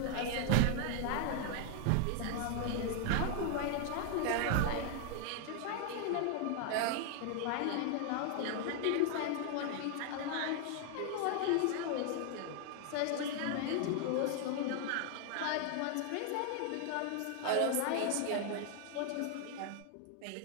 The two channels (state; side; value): different; both; correlation 0.00